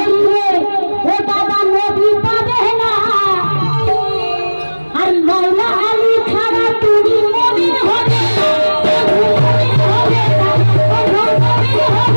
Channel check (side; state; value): both; inverted; correlation -1.00